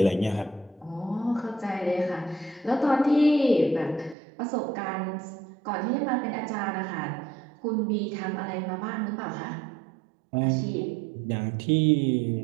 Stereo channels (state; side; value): drops out; left; at 4.2 s